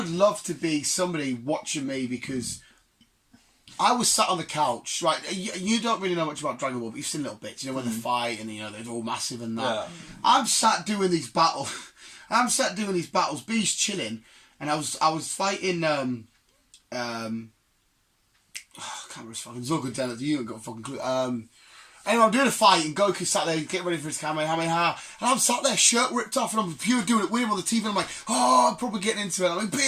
love to be somebody watching me, because I was sat on the couch, right? You don't really know much about Dragon Ball, but you've seen little bits, you know, when they fight and, you know, they're all massive and that. Yeah. I'm sat doing these battles. B's chilling, and I was fighting. I can't remember his fucking Zogoden. You ain't got a fucking clue. Anyway, I'm doing a fight, and Goku sat there getting ready for his Kamehameha, and I'm sat there, shirt ripped off, and I'm pure doing it with him on the TV, and I'm like, oh, I'm probably getting into it. I'm like, B,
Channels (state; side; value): identical; both; correlation 1.00